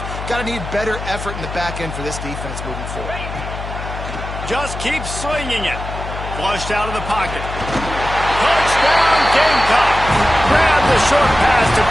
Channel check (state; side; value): noise; left; hum, 8 dB below the sound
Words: Got to need better effort in the back end for this defense moving forward. Just keep swinging it. Flushed out of the pocket. Touchdown, Gamecock. Grab the short pass to